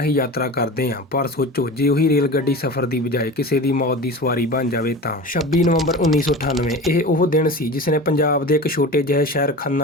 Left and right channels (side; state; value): both; normal; correlation 0.32